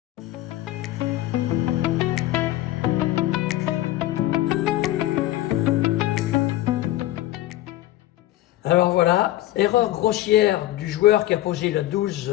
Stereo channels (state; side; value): quieter; right; 15.3 dB